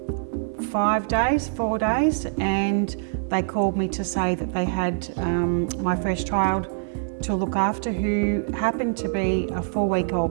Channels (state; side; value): silent; left; 57 dB below the other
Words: 4 days, and they called me to say that they had my first child to look after, who happened to be a